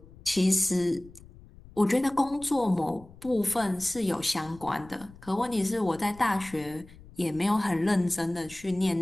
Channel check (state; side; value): noise; left; rumble, 21 dB below the sound